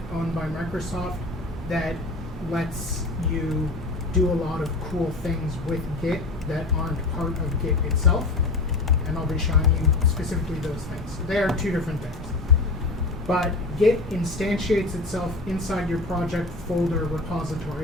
owned by Microsoft that lets you do a lot of cool things with Git that aren't part of Git itself. And I'll be showing you specifically those things. They are two different things. But Git instantiates itself inside your project folder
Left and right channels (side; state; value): right; quieter; 3.1 dB